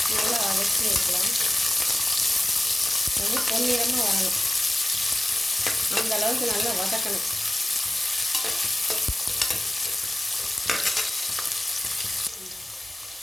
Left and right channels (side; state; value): both; normal; correlation 0.96